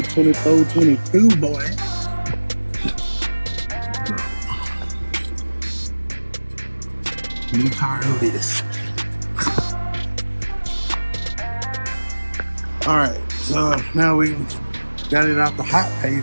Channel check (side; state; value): both; inverted; correlation -1.00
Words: 2422, boy. New tire. Who this? All right. So now we got it out the hot